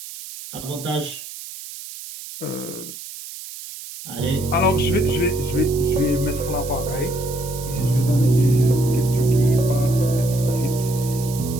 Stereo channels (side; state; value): right; noise; hiss, 12 dB below the sound